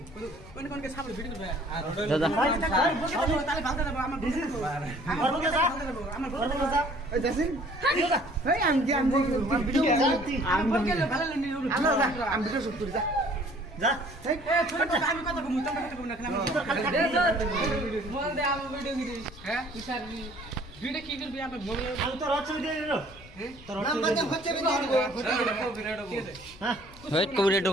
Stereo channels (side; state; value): left; noise; rumble, 20 dB below the sound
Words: Kutu kon ke sabul video ba. দাদা Tale bhalta debo ama bukas. Ama bukas. Ama bukas. Ei Jasin. Hey am video. Ama bukas le bhala le ni. Am video shoot kori ja. যা এই আমি কথা কমু তোমরা কথা কমু না কেন বল দে আমি ভিডিও কি হ্যাঁ ইসার ভিডিও কি করবি আমি মোবাইল আমি তো রচ ভিডিও দিলো হ্যাঁ তোর নাম বাদে হচ্ছে ভিডিও হ্যাঁ ওয়েট করে